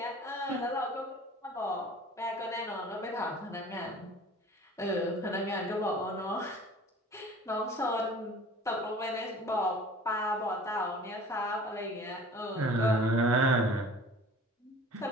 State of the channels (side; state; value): both; normal; correlation 0.45